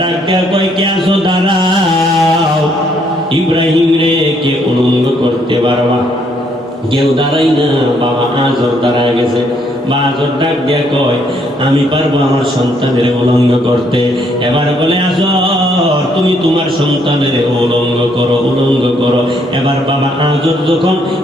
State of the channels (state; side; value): normal; both; correlation 0.70